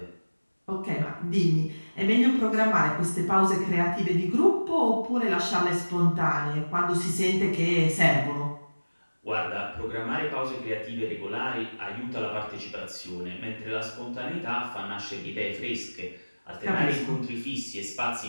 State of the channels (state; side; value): inverted; both; correlation -1.00